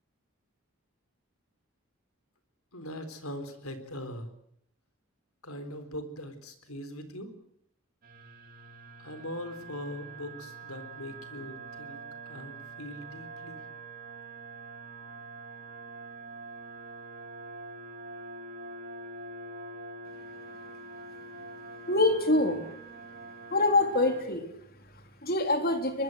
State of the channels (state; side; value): normal; both; correlation -0.15